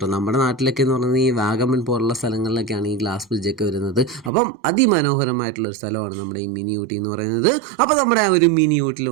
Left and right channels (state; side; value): drops out; left; at 4.3 s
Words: നമ്മുടെ നാട്ടിലൊക്കെ എന്ന് പറയുന്നത് ഈ വാഗമൺ പോലുള്ള സ്ഥലങ്ങളിലൊക്കെയാണ് ഈ ഗ്ലാസ് ബ്രിഡ്ജൊക്കെ വരുന്നത്. അപ്പം അതിമനോഹരമായിട്ടുള്ളൊരു സ്ഥലമാണ് നമ്മുടെ ഈ മിനി ഊട്ടി എന്ന് പറയുന്നത്. അപ്പോൾ നമ്മുടെ ആ ഒരു മിനി ഊട്ടിയിൽ